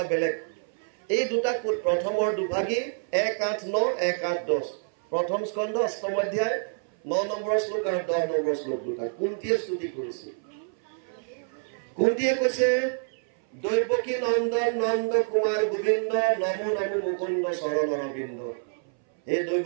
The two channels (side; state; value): left; silent; 59 dB below the other